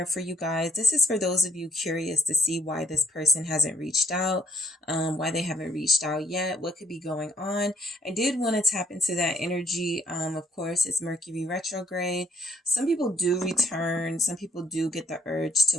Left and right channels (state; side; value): normal; both; correlation 0.67